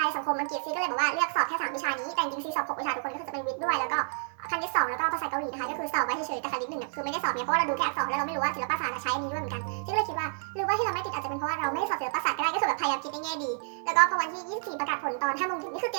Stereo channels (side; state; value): left; silent; digital silence